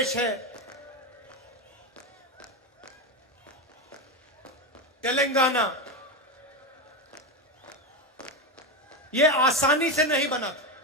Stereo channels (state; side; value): normal; both; correlation 0.12